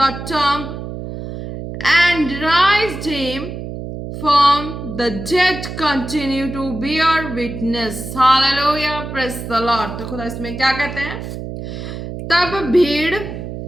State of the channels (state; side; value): noise; right; hum, 8 dB below the sound